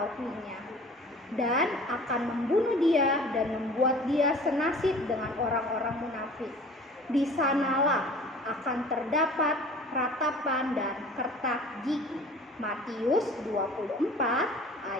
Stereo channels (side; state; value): both; normal; correlation 0.45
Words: dan akan membunuh dia dan membuat dia senasib dengan orang-orang munafik. Di sanalah akan terdapat ratapan dan kertak gigi. Matius 24